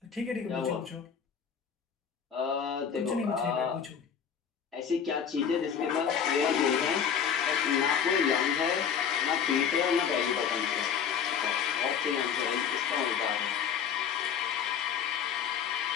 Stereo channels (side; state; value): right; quieter; 7.6 dB